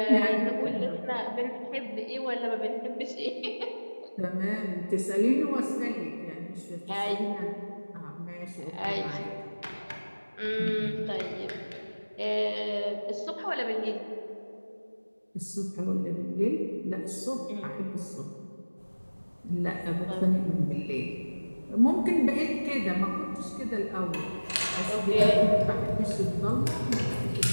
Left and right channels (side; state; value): both; inverted; correlation -1.00